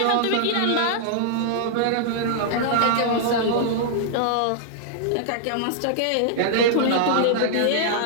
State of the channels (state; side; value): different; both; correlation -0.01